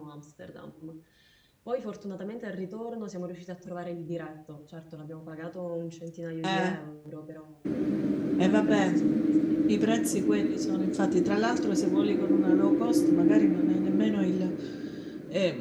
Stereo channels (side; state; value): both; identical; correlation 1.00